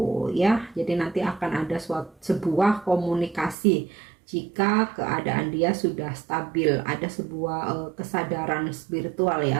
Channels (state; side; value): drops out; left; at 3.6 s